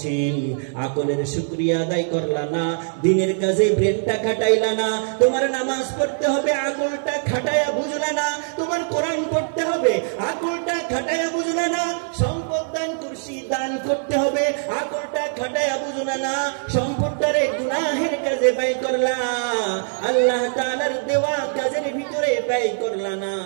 আকলের শুকরিয়া আদায় করলা না, দিনের কাজে ব্রেনটা খাটাইলা না, তোমার নামাজ পড়তে হবে আকলটা খাটায়া বুঝলা না, তোমার কোরআন পড়তে হবে আকলটা খাটায়া বুঝলা না, সম্পদ দান করছি দান করতে হবে আকলটা খাটায়া বুঝলা না, সম্পদটারে গুনাহের কাজে ব্যয় করলা, আল্লাহ তাআলার দেওয়া কাজের ভিতরে ব্যয় করলা না,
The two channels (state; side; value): silent; left; 64 dB below the other